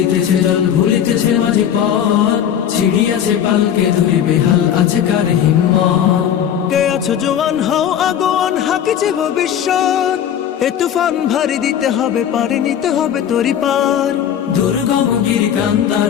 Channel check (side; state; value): right; quieter; 9.4 dB